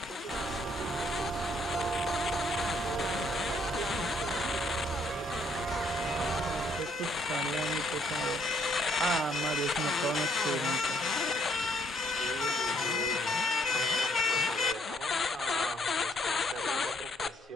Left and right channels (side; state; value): both; normal; correlation 0.69